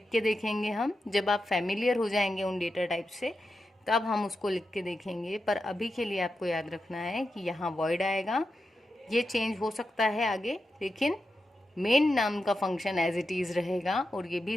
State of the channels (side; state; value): both; normal; correlation 0.89